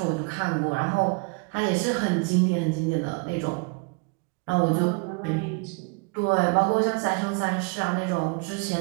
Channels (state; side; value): quieter; left; 31.6 dB